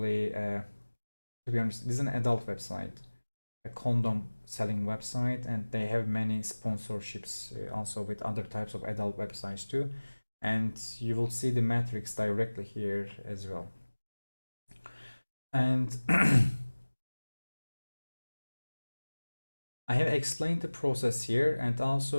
to be honest, this is an adult website, a condom selling website, and they have many sponsorships also with other types of adult websites too. And you will see the metrics directly here as well. And I have explained the process here, and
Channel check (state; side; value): inverted; both; correlation -1.00